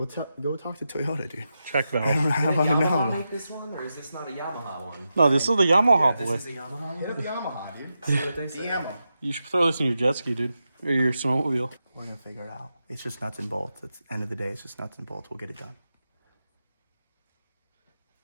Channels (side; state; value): both; inverted; correlation -0.89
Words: talk to Toyota, dude. check valve? I Did don't Yamaha know. make this one, or is this not a Yamaha one? No, this is the Yamaha boy. This is a Yamaha Hit one? up Yamaha, dude. See what they say. Yamaha. You should throw this in your jet ski, dude. Or your snowmobile. We're gonna figure it out. It's just nuts and bolts. At the end of the day, it's just nuts and bolts. We'll get it done.